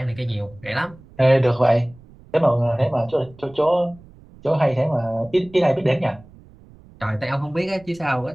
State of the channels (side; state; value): right; noise; rumble, 24 dB below the sound